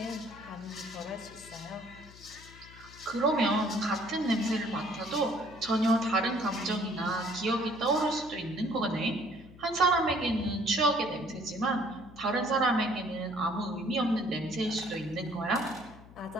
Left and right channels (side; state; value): left; noise; hum, 20 dB below the sound